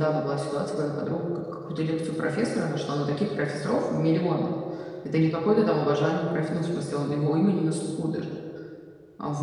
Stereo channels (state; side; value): identical; both; correlation 1.00